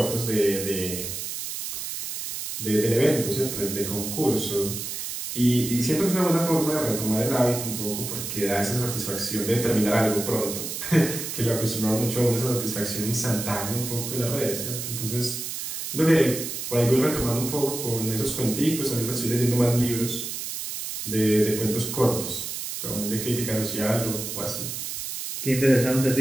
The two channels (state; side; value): noise; right; hiss, 6 dB below the sound